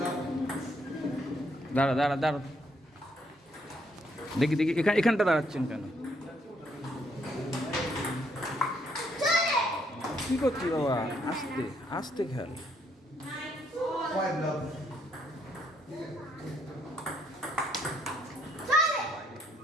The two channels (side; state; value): both; normal; correlation 0.71